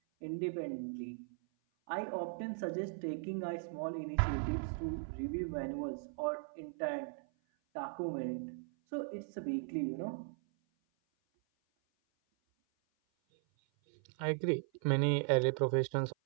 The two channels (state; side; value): silent; left; 52 dB below the other